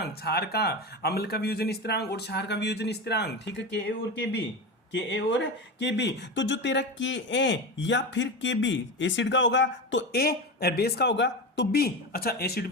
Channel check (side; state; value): both; normal; correlation 0.22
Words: क्षार का अम्ल का वियोजन स्थिरांक और क्षार का वियोजन स्थिरांक। ठीक है, के ए और के बी, के ए और के बी। तो जो तेरा के ए या फिर के बी एसिड का होगा तो ए, बेस का होगा तो बी। अच्छा, एसिड